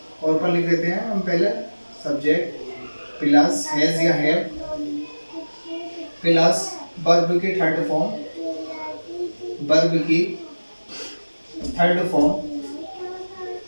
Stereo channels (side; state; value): both; inverted; correlation -1.00